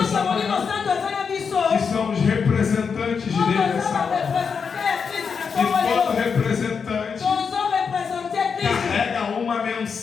essa Molimo manhã, Santo aza na biso. que somos representante carrega uma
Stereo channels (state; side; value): quieter; right; 6.0 dB